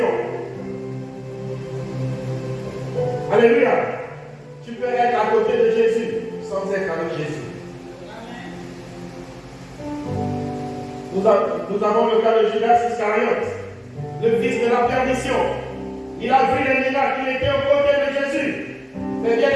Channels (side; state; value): both; identical; correlation 1.00